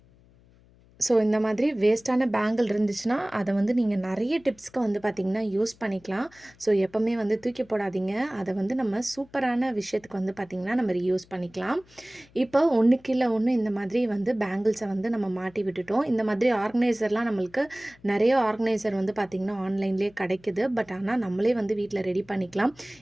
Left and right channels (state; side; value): noise; left; hum, 28 dB below the sound